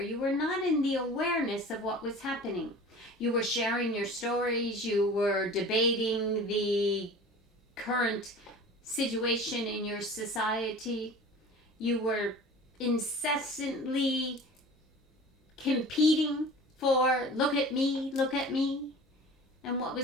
were not in the awareness of what was happening. You were sharing your stories. You were debating the current situation in your society. You were incessantly competing for look at me, look at me. And what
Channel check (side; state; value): both; normal; correlation 0.40